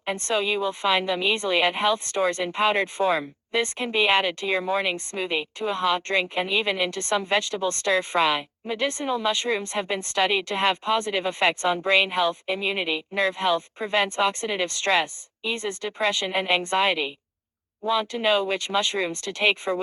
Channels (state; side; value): identical; both; correlation 1.00